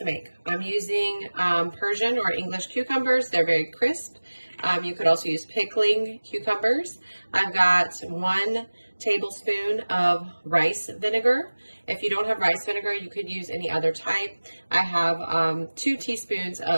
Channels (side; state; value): both; inverted; correlation -1.00